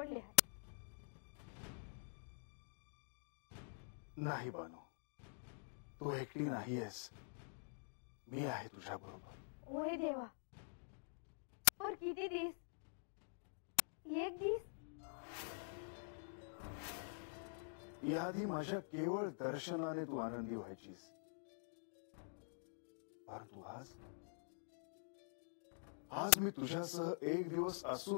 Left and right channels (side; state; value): right; silent; digital silence